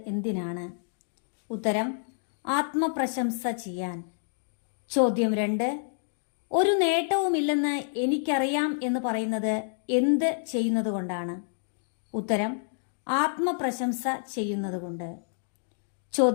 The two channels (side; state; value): right; silent; digital silence